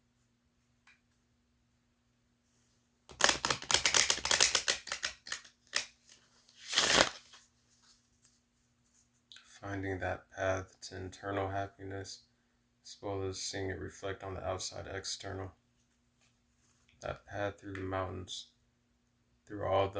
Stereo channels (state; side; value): identical; both; correlation 1.00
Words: Finding that path to internal happiness, as well as seeing it reflect on the outside external. That path through the mountains, through all